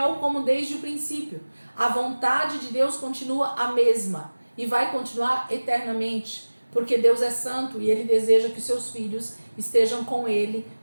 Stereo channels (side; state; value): both; inverted; correlation -1.00